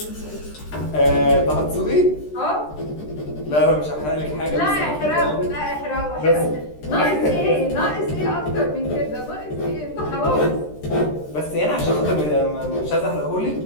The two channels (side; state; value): right; late; 13 ms